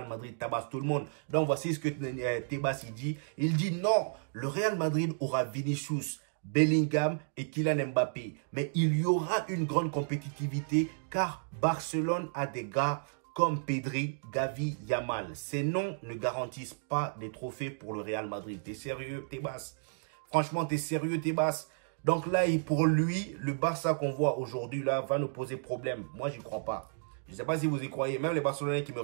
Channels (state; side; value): silent; left; digital silence